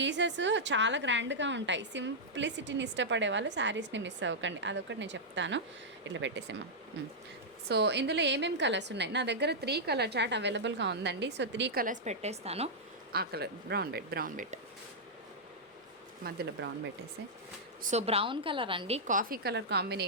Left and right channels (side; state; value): both; normal; correlation -0.08